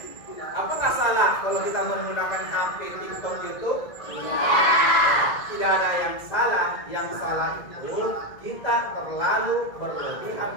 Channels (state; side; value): late; right; 2.0 ms